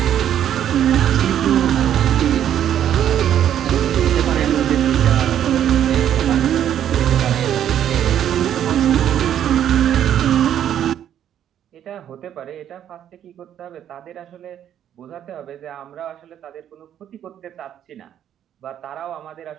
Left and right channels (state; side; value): quieter; left; 10.3 dB